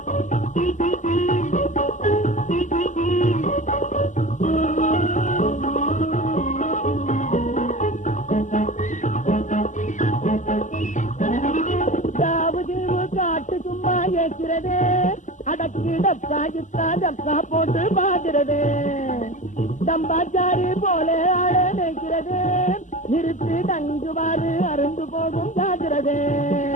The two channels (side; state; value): right; late; 0.36 ms